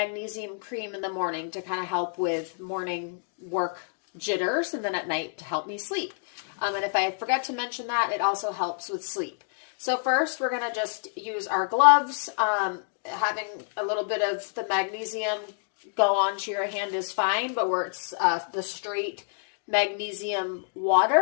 cream in the morning to kind of help with morning work jitters, and then at night to help me sleep. And if I forgot to mention that, it also helps with sleep. So first, we're going to just use our gloves. Having a little bit of the magnesium go onto your hand is fine, but where it's the straight magnesium water,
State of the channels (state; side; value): silent; right; digital silence